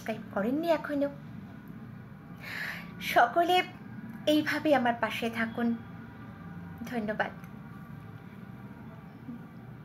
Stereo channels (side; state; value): both; identical; correlation 1.00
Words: করেননি এখনো। সকলে এইভাবে আমার পাশে থাকুন। ধন্যবাদ,